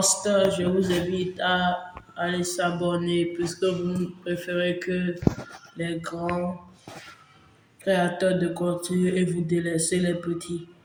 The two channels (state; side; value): identical; both; correlation 1.00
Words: je vous invite à aller s'abonner puisque vous préférez que les grands créateurs de contenu et vous délaissez les petits.